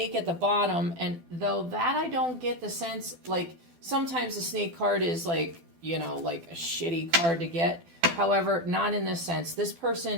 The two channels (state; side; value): late; left; 12 ms